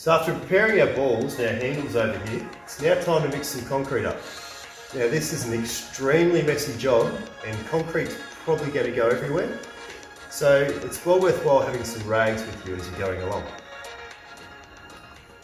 after preparing our balls and our handles over here, it's now time to mix some concrete up. Now this is an extremely messy job and concrete's probably going to go everywhere. So it's well worthwhile having some rags with you as you're going along.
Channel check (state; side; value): identical; both; correlation 1.00